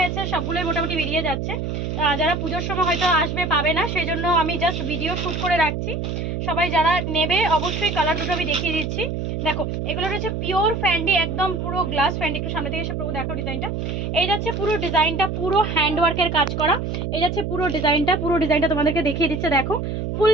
সবগুলোই মোটামুটি বেরিয়ে যাচ্ছে। যারা পুজোর সময় হয়তো আসবে পাবে না, সেই জন্য আমি জাস্ট ভিডিও শ্যুট করে রাখছি। সবাই যারা নেবে অবশ্যই কালার দুটো আমি দেখিয়ে দিচ্ছি। দেখো, এগুলো রয়েছে পিওর ফ্যান্ডি, একদম পুরো গ্লাস ফ্যান্ডি। একটু সামনে থেকে এসে পুরো দেখো ডিজাইনটা। এই যাচ্ছে পুরো ডিজাইনটা, পুরো হ্যান্ডওয়ার্কের কাজ করা। এই যাচ্ছে পুরো ডিজাইনটা তোমাদেরকে দেখিয়ে দিচ্ছে। দেখো,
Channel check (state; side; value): noise; right; hum, 3 dB below the sound